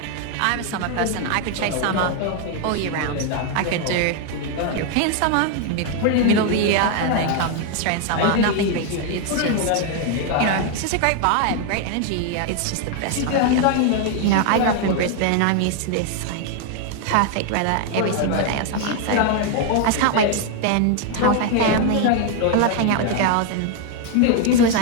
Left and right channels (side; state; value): both; different; correlation 0.00